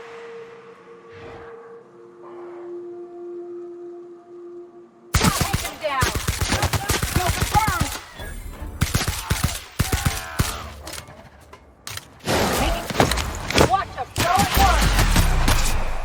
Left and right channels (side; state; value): both; identical; correlation 1.00